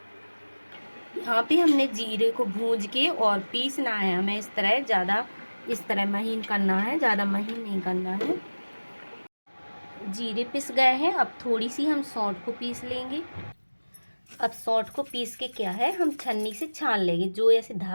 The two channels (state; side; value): inverted; both; correlation -1.00